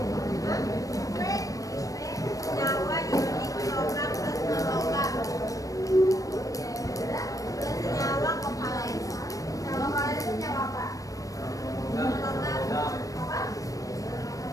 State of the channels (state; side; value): late; right; 0.16 ms